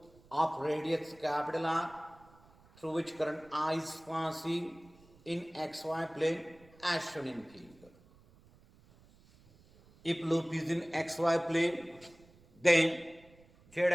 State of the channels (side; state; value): right; noise; rumble, 27 dB below the sound